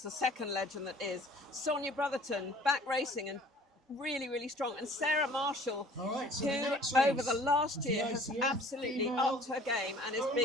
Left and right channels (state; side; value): normal; both; correlation 0.51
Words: the second legend that is. Sonia Brotherton, back racing and really, really strong. And Sarah Marshall, All right, so the who next race over the last is year the has ICF absolutely female upped her game and is over